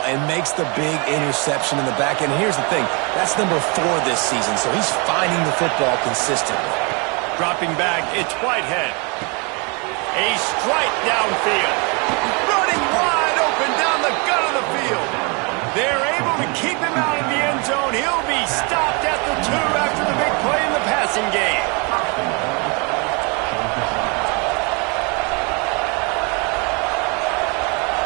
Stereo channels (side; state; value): left; quieter; 32.0 dB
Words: and makes the big interception in the back end. Here's the thing. That's number 4 this season, so he's finding the football consistently. Dropping back, it's Whitehead. A strike downfield. Running wide open down the gut of the field. They're able to keep him out of the end zone. He'll be stopped at the 2 after the big play in the passing game.